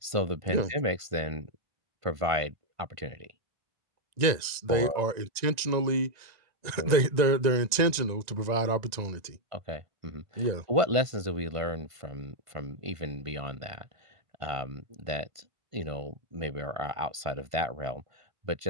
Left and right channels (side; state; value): left; late; 1.9 ms